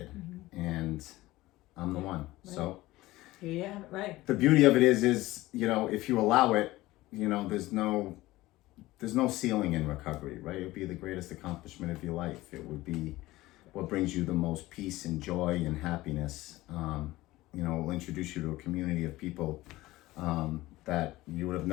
and I'm the one. Right. So. Yeah. Right. The beauty of it is if you allow it, there's no ceiling in recovery, right? It would be the greatest accomplishment of your life. It would be what brings you the most peace and joy and happiness. It will introduce you to a community of people that that you would have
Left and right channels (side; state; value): right; quieter; 18.1 dB